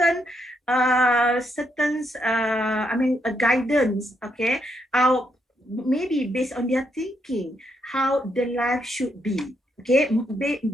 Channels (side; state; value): both; normal; correlation 0.78